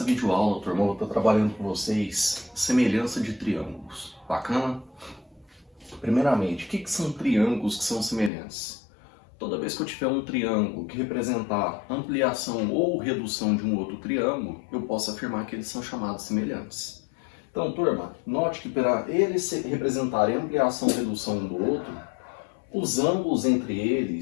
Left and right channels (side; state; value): right; drops out; at 8.3 s